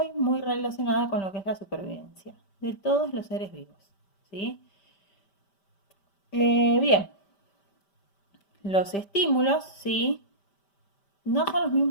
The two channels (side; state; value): right; late; 5.1 ms